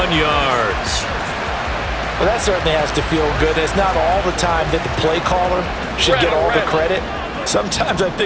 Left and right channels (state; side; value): identical; both; correlation 1.00